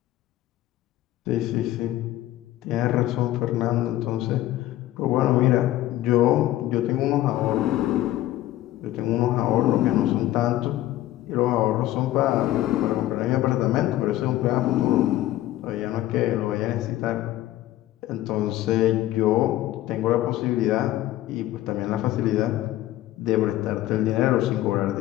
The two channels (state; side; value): quieter; right; 14.7 dB